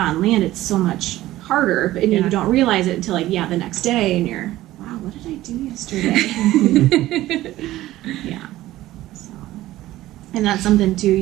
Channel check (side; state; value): left; quieter; 15.6 dB